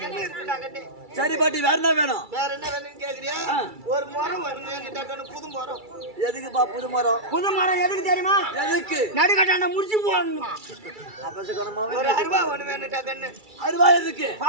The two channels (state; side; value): late; left; 2.3 ms